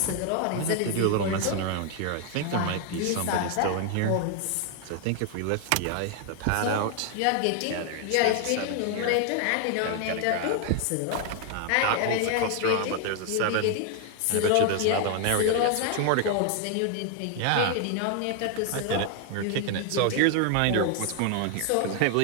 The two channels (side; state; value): both; different; correlation 0.00